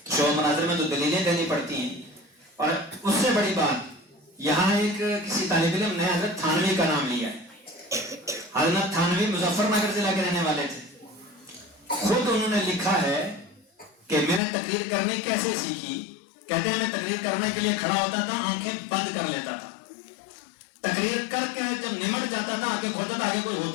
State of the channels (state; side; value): drops out; right; at 14.4 s